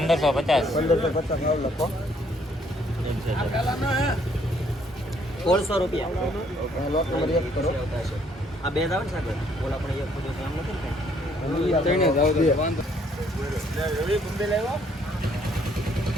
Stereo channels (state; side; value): normal; both; correlation 0.66